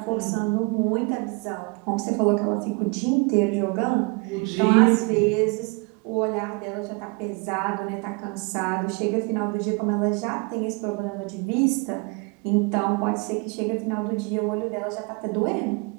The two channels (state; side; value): quieter; left; 30.5 dB